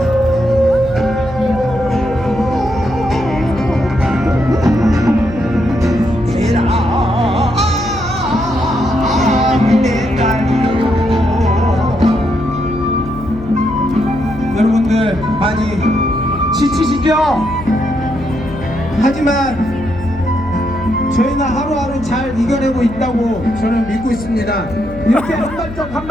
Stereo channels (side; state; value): left; noise; hum, 14 dB below the sound